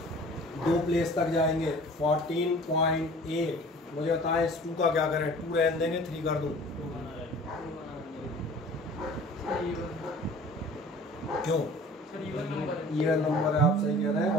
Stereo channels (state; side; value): normal; both; correlation 0.46